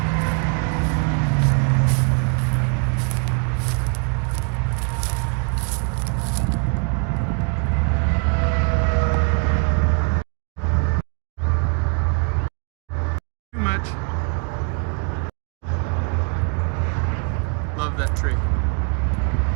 Much. Love that tree.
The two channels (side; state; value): left; quieter; 37.6 dB